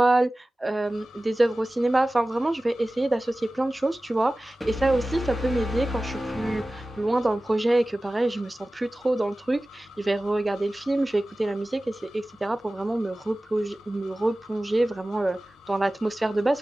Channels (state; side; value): normal; both; correlation 0.97